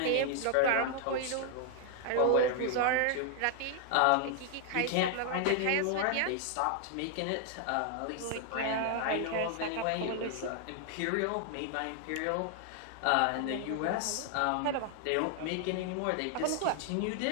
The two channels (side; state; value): both; different; correlation 0.00